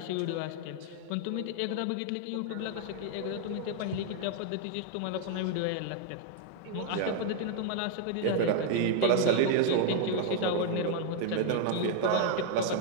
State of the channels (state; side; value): different; both; correlation 0.00